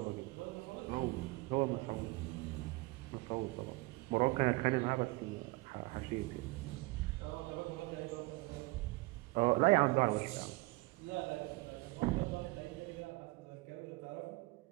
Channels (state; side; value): quieter; left; 23.2 dB